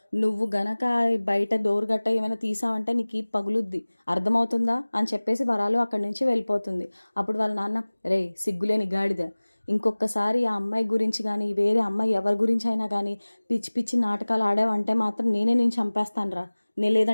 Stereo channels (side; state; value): both; inverted; correlation -1.00